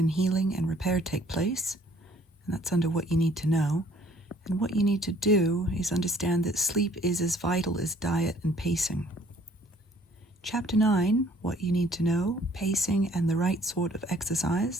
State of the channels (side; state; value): both; normal; correlation 0.59